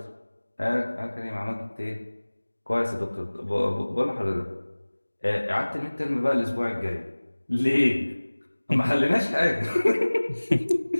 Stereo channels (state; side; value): inverted; both; correlation -1.00